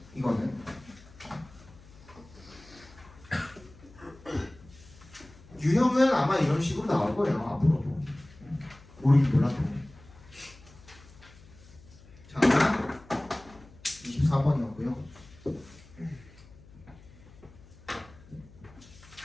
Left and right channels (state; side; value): noise; left; hum, 22 dB below the sound